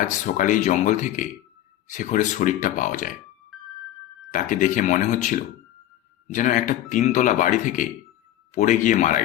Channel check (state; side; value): quieter; right; 13.0 dB